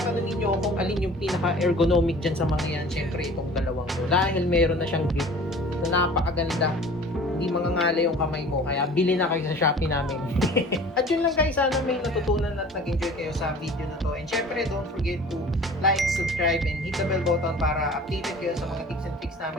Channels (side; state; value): both; normal; correlation 0.45